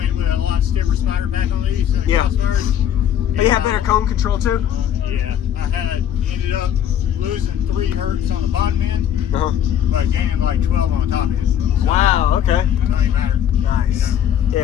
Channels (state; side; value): quieter; right; 9.8 dB